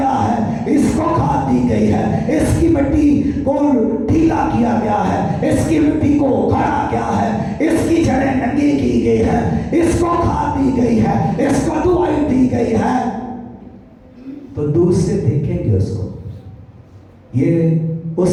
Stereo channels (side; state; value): both; identical; correlation 1.00